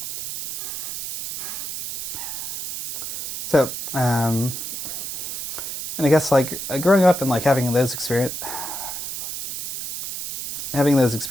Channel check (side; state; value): right; noise; hiss, 4 dB below the sound